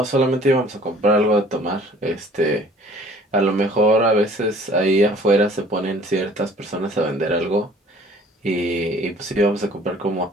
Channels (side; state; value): both; normal; correlation 0.53